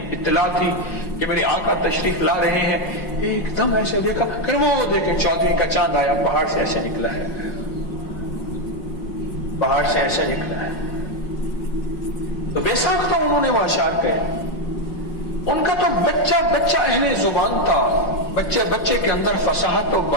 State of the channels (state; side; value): late; right; 5.5 ms